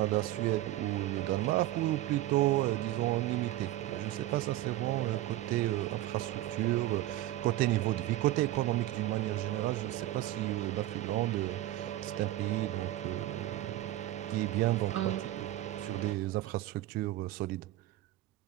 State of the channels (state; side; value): quieter; left; 14.9 dB